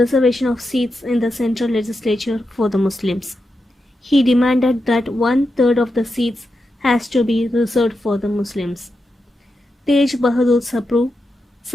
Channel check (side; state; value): both; normal; correlation 0.87